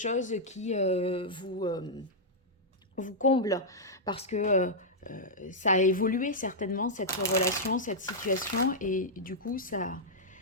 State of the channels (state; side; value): normal; both; correlation -0.07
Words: qui vous comble parce que ça a évolué certainement, cette relation, cette situation, et du coup, ça